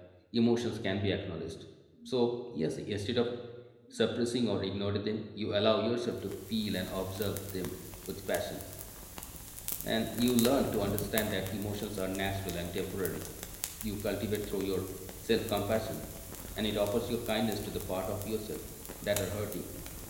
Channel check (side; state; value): both; identical; correlation 1.00